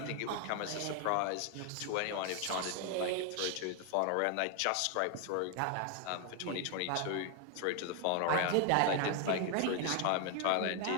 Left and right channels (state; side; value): different; both; correlation 0.01